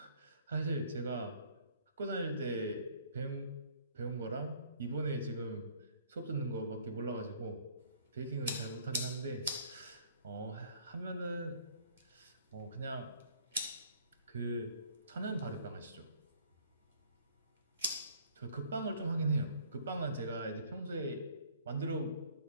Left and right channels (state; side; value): inverted; both; correlation -0.57